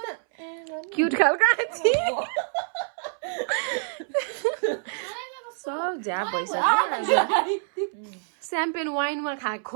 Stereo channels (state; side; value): silent; left; 61 dB below the other